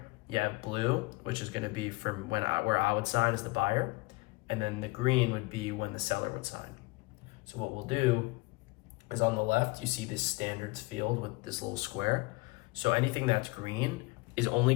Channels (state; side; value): quieter; right; 23.9 dB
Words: you have blue, which is going to be from where I would sign as the buyer, and then the green would be when the seller would sign. So what we'll do is on the left, you see this standards field with this little square. So anything that's green is